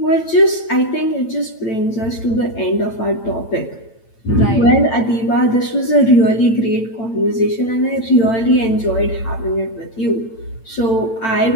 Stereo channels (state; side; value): late; right; 8.9 ms